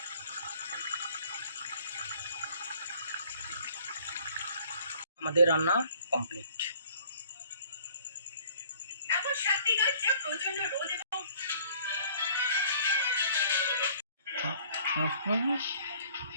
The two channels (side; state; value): both; inverted; correlation -0.56